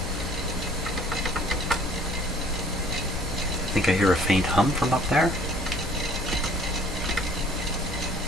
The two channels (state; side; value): normal; both; correlation 0.55